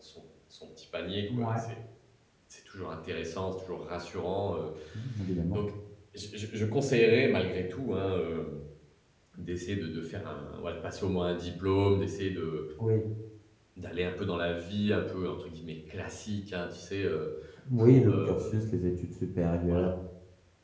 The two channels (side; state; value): both; identical; correlation 1.00